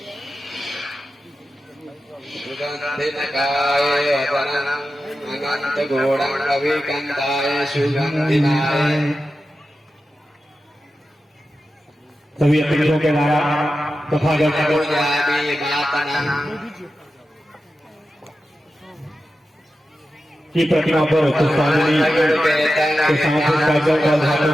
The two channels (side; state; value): both; normal; correlation 0.92